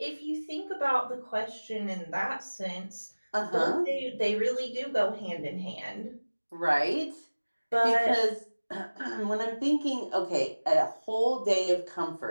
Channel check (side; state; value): both; inverted; correlation -1.00